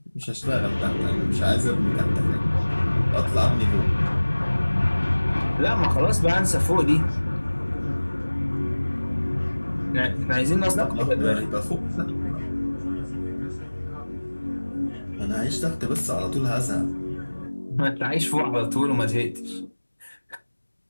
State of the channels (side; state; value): both; inverted; correlation -1.00